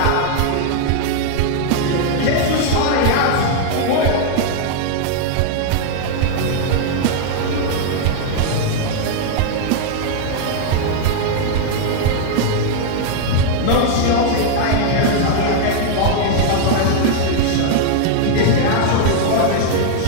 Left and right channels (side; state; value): both; different; correlation 0.00